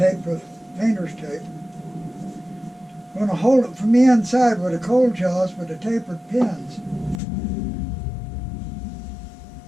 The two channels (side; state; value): right; drops out; at 7.2 s